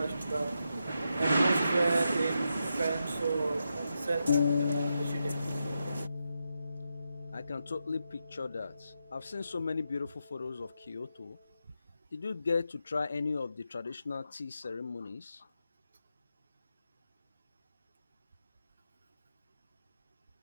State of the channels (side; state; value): both; inverted; correlation -0.86